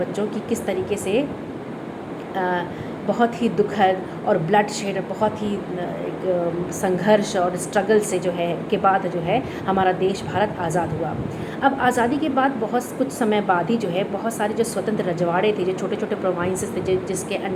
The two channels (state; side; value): identical; both; correlation 1.00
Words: कि किस तरीके से बहुत ही दुखद और ब्लड शेड, बहुत ही एक संघर्ष और स्ट्रगल से जो है के बाद जो है हमारा देश भारत आज़ाद हुआ। अब आज़ादी के बाद बहुत कुछ समय बाद ही जो है बहुत सारे जो स्वतंत्र रजवाड़े थे, जो छोटे छोटे प्रोविंसेस थे, जिसके